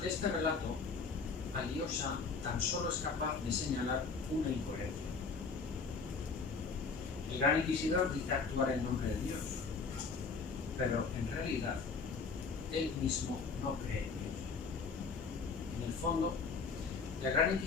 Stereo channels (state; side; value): quieter; right; 4.8 dB